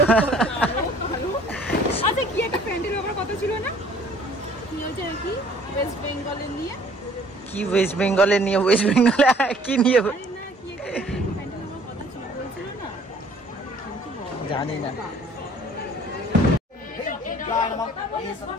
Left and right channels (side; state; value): both; normal; correlation 0.55